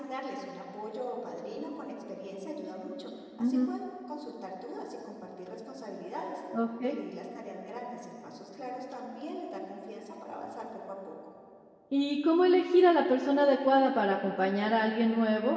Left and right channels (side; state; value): both; identical; correlation 1.00